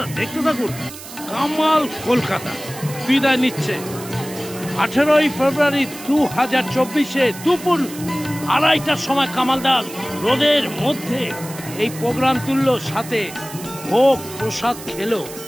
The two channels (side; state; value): right; noise; hiss, 14 dB below the sound